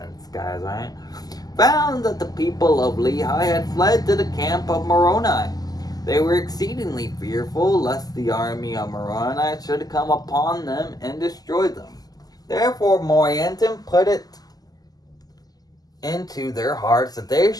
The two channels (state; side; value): late; right; 0.18 ms